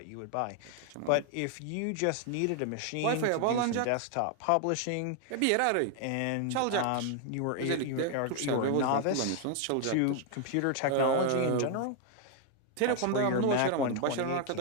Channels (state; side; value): different; both; correlation 0.00